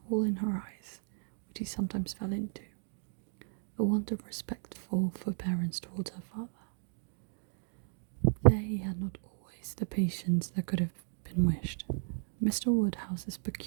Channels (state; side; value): silent; left; 55 dB below the other